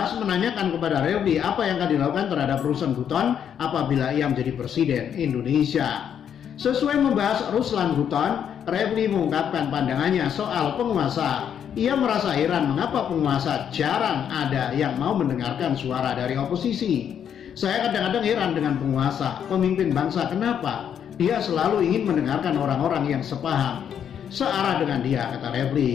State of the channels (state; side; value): quieter; right; 8.7 dB